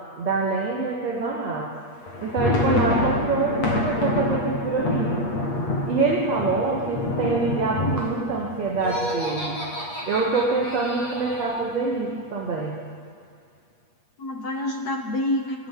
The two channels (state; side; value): late; right; 8.4 ms